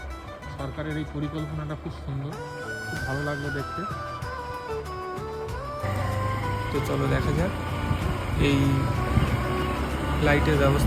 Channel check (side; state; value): both; identical; correlation 1.00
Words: সরকারের এই পরিকল্পনাটা খুব সুন্দর, খুব ভালো লাগলো দেখতে। তো চলো দেখা যাক এই লাইটের